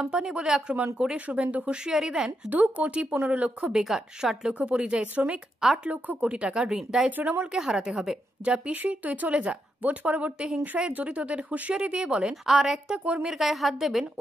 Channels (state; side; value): normal; both; correlation 0.83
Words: বলে আক্রমণ করে শুভেন্দু হুঁশিয়ারি দেন, 2 কোটি 15 লক্ষ বেকার, 60 লক্ষ পরিযায়ী শ্রমিক, 8 লক্ষ কোটি টাকা ঋণ। দায় তৃণমূলকে হারাতে হবে। যা পিসি, তুই চলে যা। ভোট পরবর্তী হিংসায় জড়িতদের হুঁশিয়ারি দিয়ে বলেন, আর একটা কর্মীর গায়ে হাত দেবেন,